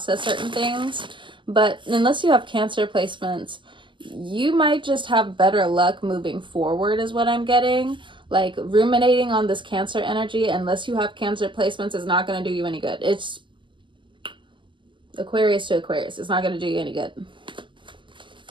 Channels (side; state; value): left; late; 0.24 ms